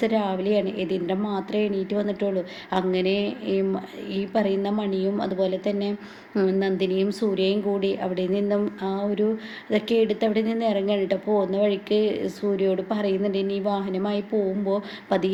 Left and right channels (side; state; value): both; identical; correlation 1.00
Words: രാവിലെയാണ്. യതീന്ദ്രൻ മാത്രമേ എണീറ്റ് വന്നിട്ടുള്ളൂ. അങ്ങനെ ഈ പറയുന്ന മണിയും അതുപോലെ തന്നെ നന്ദിനിയും സൂര്യയും കൂടി അവിടെ നിന്നും ആ ഒരു ഇതൊക്കെ എടുത്ത് അവിടെ നിന്ന് ഇറങ്ങാൻ കേട്ടോ. പോകുന്ന വഴിക്ക് സൂര്യയോട് പറയുന്നുണ്ട്, ഇനി വാഹനമായി പോകുമ്പോൾ